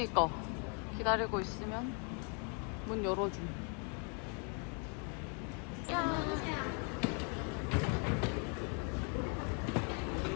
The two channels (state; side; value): quieter; right; 38.4 dB